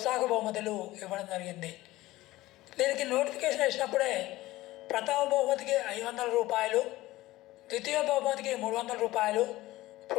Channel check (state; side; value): quieter; right; 17.7 dB